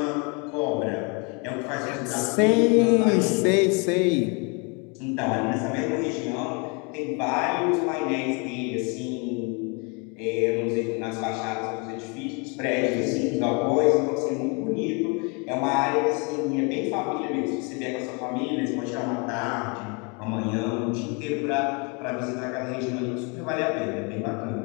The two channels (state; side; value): quieter; right; 32.9 dB